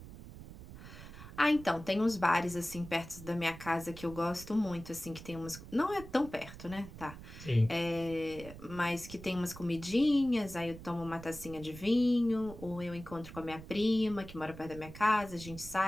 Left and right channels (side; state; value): right; noise; rumble, 14 dB below the sound